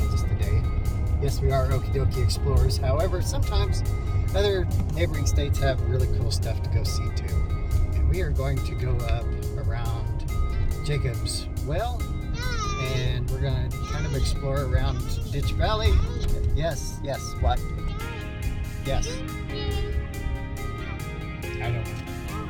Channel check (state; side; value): identical; both; correlation 1.00